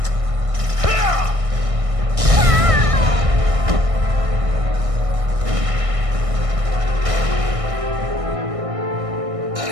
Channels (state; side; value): late; left; 1.6 ms